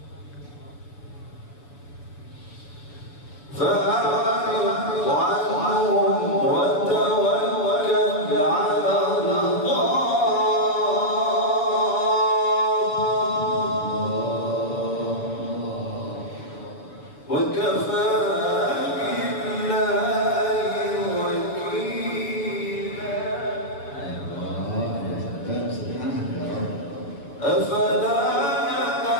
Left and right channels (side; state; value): right; late; 7.0 ms